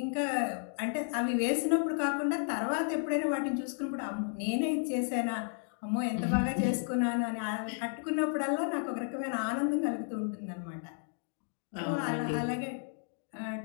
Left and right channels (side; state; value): right; silent; 56 dB below the other